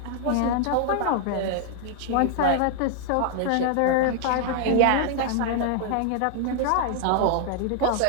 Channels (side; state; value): both; different; correlation -0.01